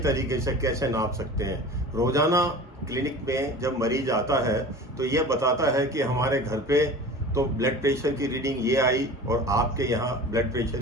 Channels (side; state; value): both; normal; correlation 0.38